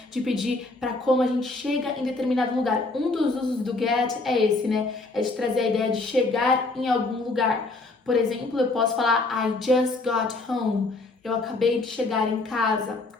De pedir para como a gente chega em determinado lugar. Um dos usos do get é esse, né? É de trazer a ideia de chegar em algum lugar. Por exemplo, eu posso falar I just got home. Eu acabei de chegar em casa.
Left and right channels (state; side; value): quieter; right; 3.3 dB